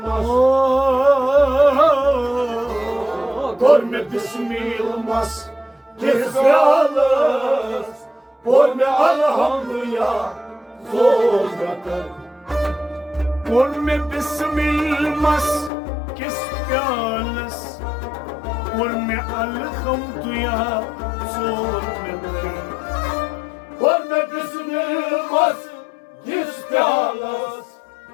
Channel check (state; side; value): drops out; right; at 15.7 s